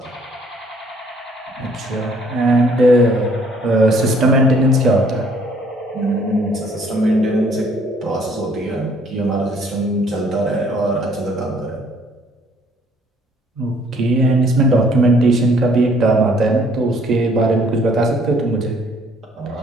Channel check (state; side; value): normal; both; correlation 0.61